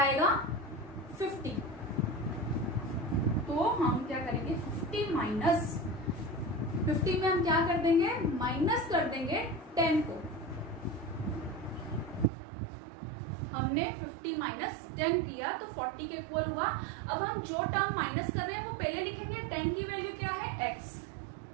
50। तो हम क्या करेंगे, 50 माइनस 50 में हम क्या कर देंगे, माइनस कर देंगे 10 को। हमने 50 माइनस 10 किया तो 40 के इक्वल हुआ। अब हम जो टर्म माइनस कर रहे हैं वो पहले लिखेंगे, 10 की वैल्यू क्या है, x,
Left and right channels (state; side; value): drops out; left; at 12.3 s